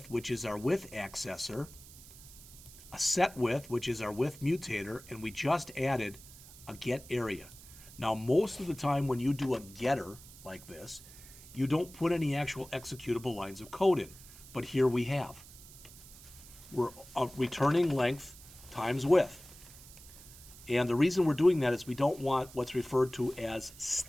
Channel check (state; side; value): noise; right; hiss, 19 dB below the sound